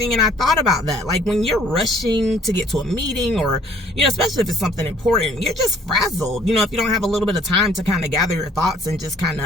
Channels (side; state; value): both; normal; correlation 0.58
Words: And I thought about that. Like, when you're rushing to get to a meeting, or, you know, especially if it's something important, you're just frazzled, you know, if you don't have a little bit of time to kind of gather your thoughts and just kind